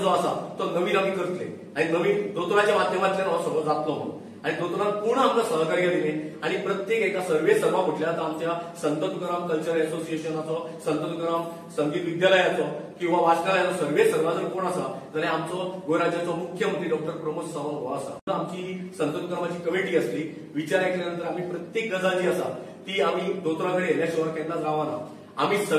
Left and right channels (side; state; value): both; identical; correlation 1.00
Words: जो आसा तो नवीन आमी करतले आणि नवीन दोतोराच्या माध्यमांतल्यान हो सगळो जातलो म्हणून आणि दोतोरान पूर्ण आमकां सहकार्य दिलें आणि प्रत्येक एका सर्वे सर्वा म्हटल्यार आमच्या संत तुकाराम कल्चरल एसोसिएशनाचो, संत तुकाराम संगीत विद्यालयाचो किंवा वाचनालयाचो सर्वे सर्वा जर कोण आसा जाल्यार आमचो गोंय राज्याचो मुख्यमंत्री डॉक्टर प्रमोद सावंत हो आसा। आमची संत तुकारामाची कमिटी आसली। विचार ऐकल्यानंतर आमी प्रत्येक गजाल जी आसा ती आमी दोतोरा कडेन येयल्या शिवाय केन्नाच रावना। आमी